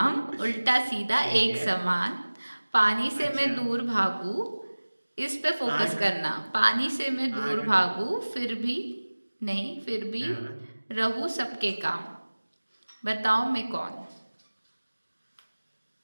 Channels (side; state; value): both; inverted; correlation -1.00